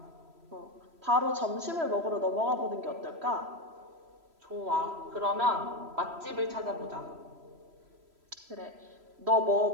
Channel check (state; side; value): late; left; 3.0 ms